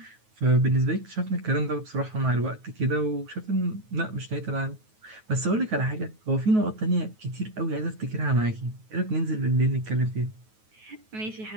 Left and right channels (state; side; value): late; left; 9.3 ms